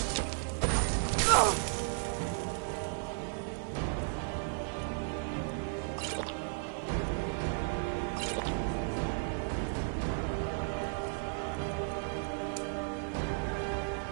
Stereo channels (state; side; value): silent; left; 55 dB below the other